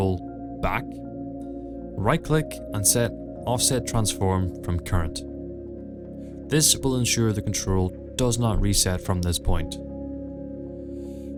back. Right click and set offset transform from current. This will ensure the control does not reset from this point.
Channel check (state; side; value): identical; both; correlation 1.00